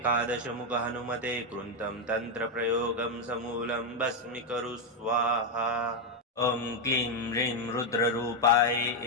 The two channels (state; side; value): normal; both; correlation 0.04